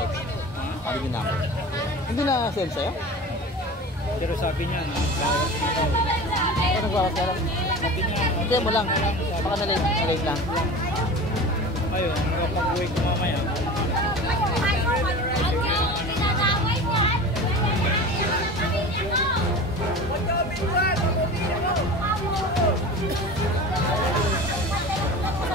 Hindi ko number. Hindi na send sa'yo? Pero sabi niya, bawas na daw. Ano nagbawas ka lang? Sabi niya, Hindi mo lang. Baka na-late lang. ayun, nakapag-uwi ko mamaya.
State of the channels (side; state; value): both; normal; correlation 0.34